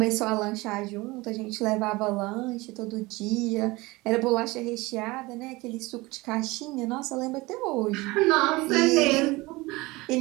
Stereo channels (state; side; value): quieter; left; 22.1 dB